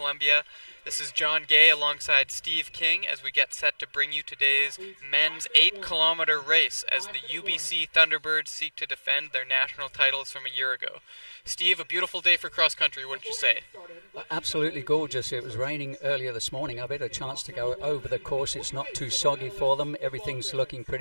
This is John Gay alongside Steve King as we get set to bring you today's men's 8-kilometer race as the UBC Thunderbirds seek to defend their national titles from a year ago. Steve, a beautiful day for cross country, wouldn't you say? Absolutely gorgeous. It was raining earlier this morning. I've had a chance to go over the course. It's not too soggy for them. Everything's looking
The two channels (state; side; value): inverted; both; correlation -1.00